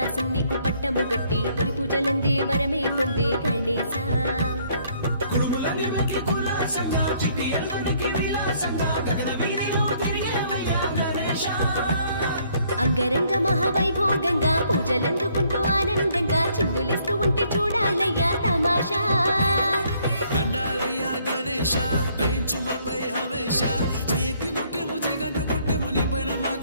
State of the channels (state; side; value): inverted; both; correlation -0.65